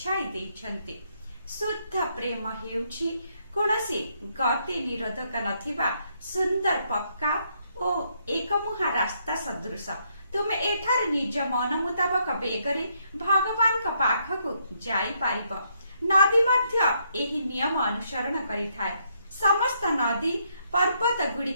देइछन्ति। शुद्ध प्रेम हेउछि कोनसी गति निरोधक नथिबा सुंदर पक्का ओ एकमुहा रास्ता सदृश। तुम एठार निज मन मुताबक बेगरे भगवान का पाखकु जाई पारिब। नदी मध्य एही नियम अनुसरण करिथाय। समस्त नदी पर्वत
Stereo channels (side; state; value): both; inverted; correlation -0.74